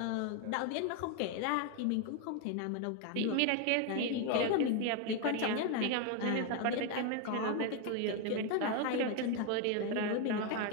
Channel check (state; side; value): different; both; correlation 0.01